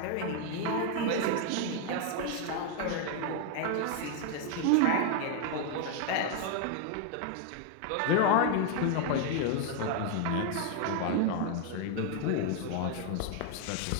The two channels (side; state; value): both; different; correlation 0.01